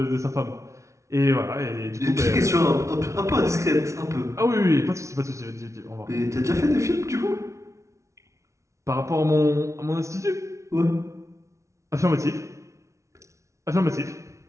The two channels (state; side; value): late; left; 0.14 ms